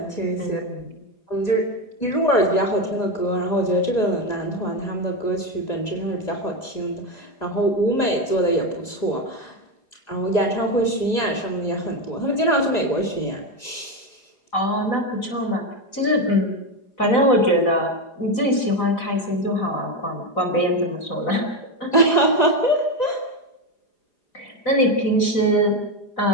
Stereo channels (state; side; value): late; right; 4.9 ms